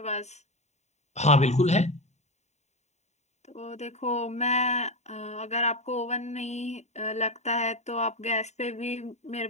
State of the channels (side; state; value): right; late; 0.32 ms